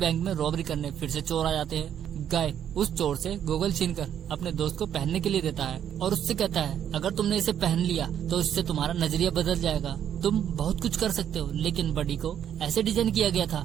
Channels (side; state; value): left; quieter; 9.6 dB